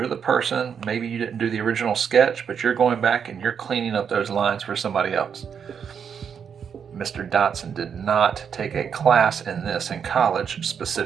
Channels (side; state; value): left; quieter; 7.3 dB